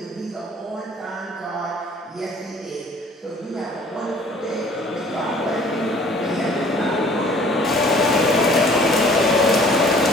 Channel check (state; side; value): normal; both; correlation 0.53